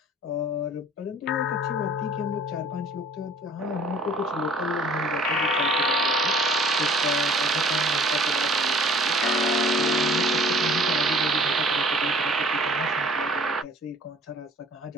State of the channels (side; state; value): both; normal; correlation 0.51